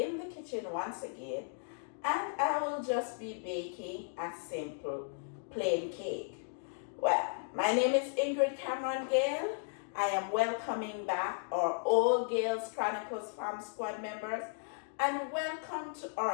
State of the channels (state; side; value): silent; right; digital silence